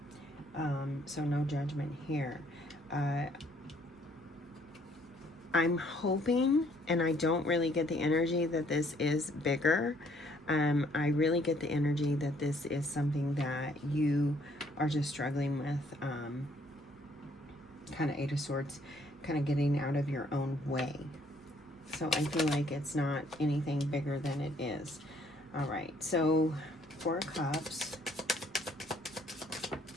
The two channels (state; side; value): noise; right; rumble, 30 dB below the sound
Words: So no judgment here. I'm hoping, and I don't really get the energy that this is bigger. I really get the energy that this is something that you are just struggling with, kind of Eight of Swords, kind of getting out of your own way. So I feel like it's not anything bigger than it is. All right, so Four of Cups,